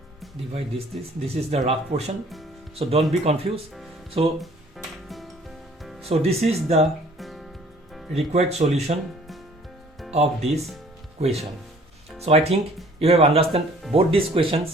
divide this. This is the rough portion. So don't be confused. So this is the required solution of this question. So I think you have understood both these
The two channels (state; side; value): normal; both; correlation 0.55